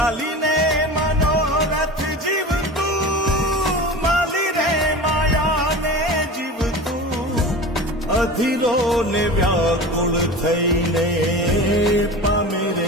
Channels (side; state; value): both; normal; correlation 0.32